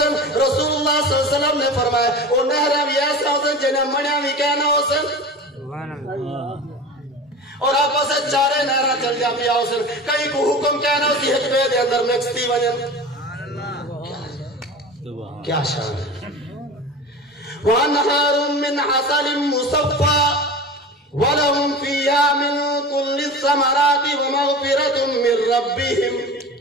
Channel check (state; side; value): normal; both; correlation 0.33